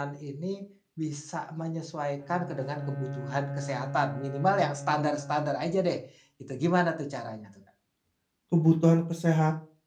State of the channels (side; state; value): both; identical; correlation 1.00